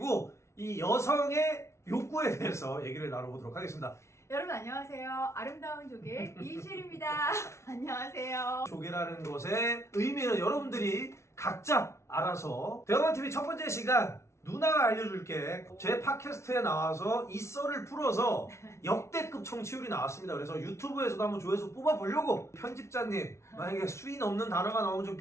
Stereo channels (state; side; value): late; right; 0.13 ms